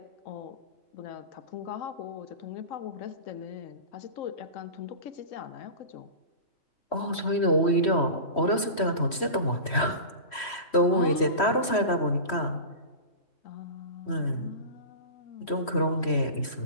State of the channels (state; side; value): late; right; 3.1 ms